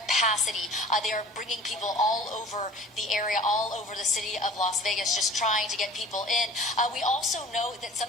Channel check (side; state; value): both; normal; correlation 0.44